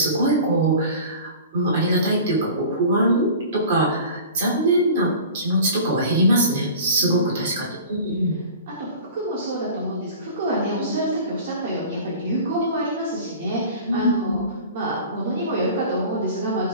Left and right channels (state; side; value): inverted; both; correlation -0.40